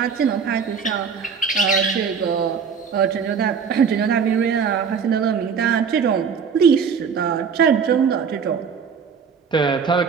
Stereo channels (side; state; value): left; quieter; 6.3 dB